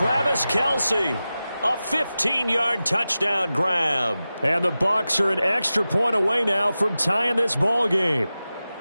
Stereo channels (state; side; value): inverted; both; correlation -0.94